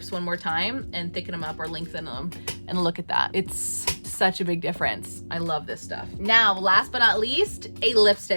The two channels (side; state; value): both; inverted; correlation -1.00